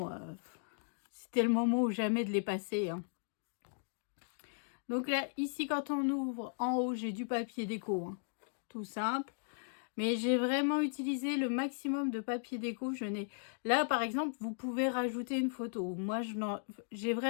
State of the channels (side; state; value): right; silent; digital silence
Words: c'était le moment ou jamais de les passer, hein. Donc là, ici, quand on ouvre, en haut, j'ai du papier déco, hein. Tout simple. Mais j'ai vraiment utilisé le maximum de papier déco. Là, par exemple, vous pouvez rajouter une photo. Moi, j'ai